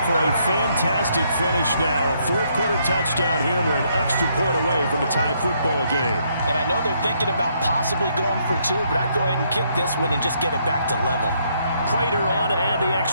for a fantastic finish now. A 4th quarter touchdown here. We're an extra point away from a tie football game. And I know they're thinking about possibly going for 2, but I'd go ahead and kick this one and just get it back to level. Prater on to add the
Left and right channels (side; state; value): both; inverted; correlation -0.72